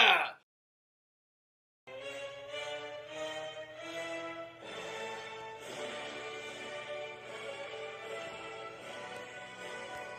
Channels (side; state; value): both; identical; correlation 1.00